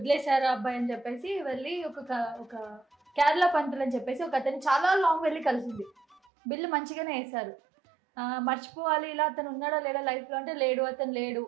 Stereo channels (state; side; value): drops out; left; at 6.2 s